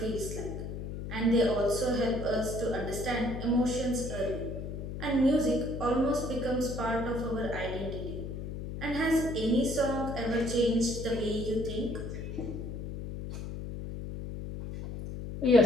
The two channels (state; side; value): noise; left; hum, 7 dB below the sound